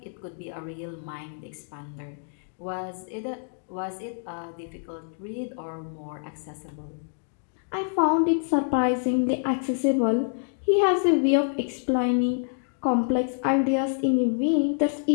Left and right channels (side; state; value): right; silent; digital silence